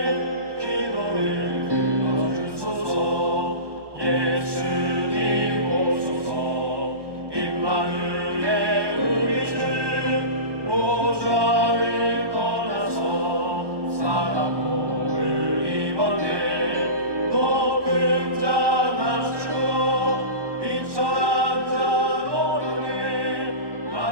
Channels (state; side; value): late; left; 1.2 ms